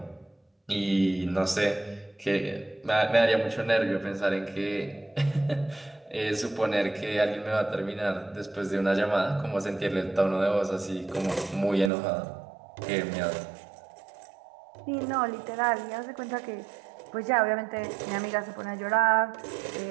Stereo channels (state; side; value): drops out; left; at 11.9 s